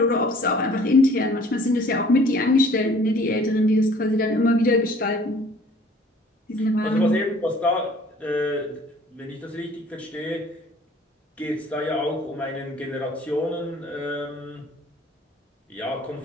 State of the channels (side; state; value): both; normal; correlation 0.53